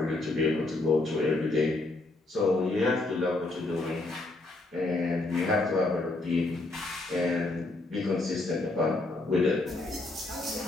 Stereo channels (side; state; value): right; quieter; 3.0 dB